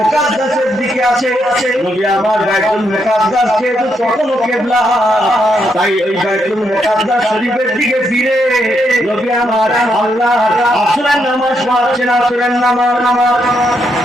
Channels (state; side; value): normal; both; correlation 0.78